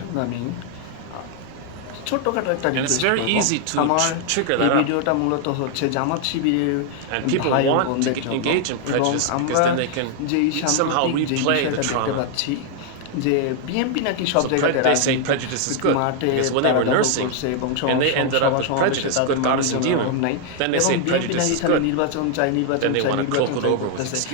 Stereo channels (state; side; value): different; both; correlation 0.00